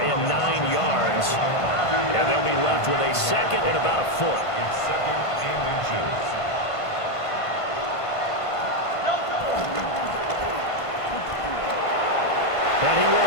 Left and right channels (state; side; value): late; right; 1.5 ms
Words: 9 yards. And they'll be left with a 2nd and about a foot. And he